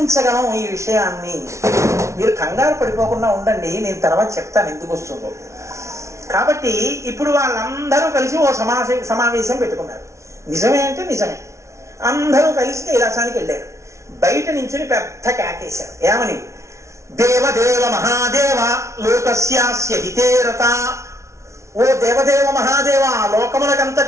ఈ విషయాన్ని మీరు కంగారు పడిపోకుండా ఉండండి, నేను తర్వాత చెప్తాను ఎందుకు వస్తుందో. కాబట్టి ఇప్పుడు వాళ్ళందరూ కలిసి ఓ సమావేశం పెట్టుకున్నారు. నిజమే అంటే నిజమే. అందరూ కలిసి కైలాసానికి వెళ్ళారు. బయట నుంచి పెద్ద కేకేశారు. ఏమని? దేవదేవ మహాదేవ లోకస్యాస్య హితేరత. ఓ దేవదేవ మహాదేవ,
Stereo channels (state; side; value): late; left; 0.14 ms